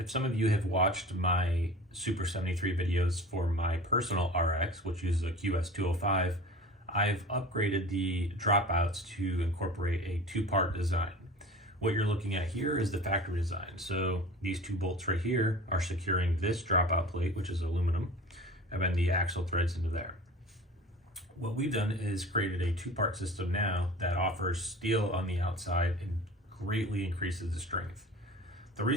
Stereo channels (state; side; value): normal; both; correlation 0.38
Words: some of you have watched my Super73 videos for my personal RX, which uses a QS205, I've upgraded the dropouts to incorporate a two-part design. What you're looking at here is the factory design. So these two bolts right here are securing this dropout plate, which is aluminum, and then the axle threads into there. What we've done is created a two-part system now that offers steel on the outside and greatly increases the strength. The